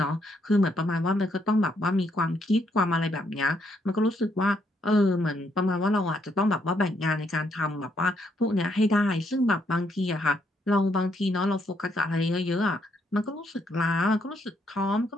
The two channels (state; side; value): normal; both; correlation 0.74